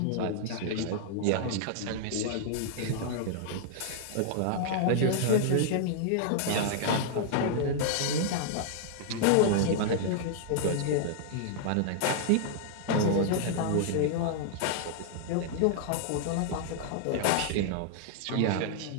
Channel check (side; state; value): both; different; correlation -0.01